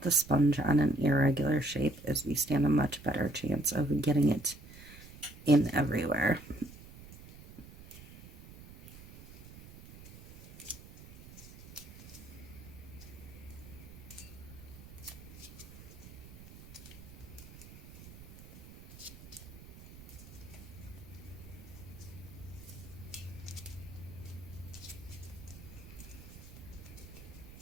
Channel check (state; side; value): noise; right; rumble, 17 dB below the sound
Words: the sponge on an irregular shape, is we stand a much better chance of getting it in everywhere.